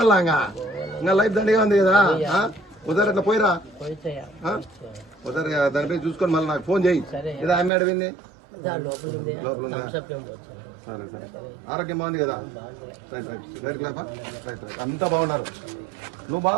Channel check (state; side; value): drops out; left; at 7.7 s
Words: ఇంకా లైఫ్ దండిగా ఉంది కదా ఒకసారి అట్లా పోయిరా ఒకసారి దానిపై చూసుకొని మళ్ళీ నాకు ఫోన్ చేయి ఏదో ఆమె అడిగింది లోపల ఉందా సరే సరే ఆరోగ్యం బాగుంది కదా రైట్ రైట్ రైట్ క్లాపా రైట్ రైట్ అంతా బాగున్నారు నువ్వు